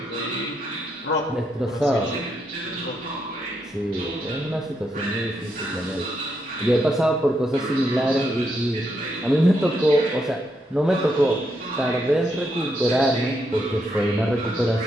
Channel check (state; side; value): normal; both; correlation 0.79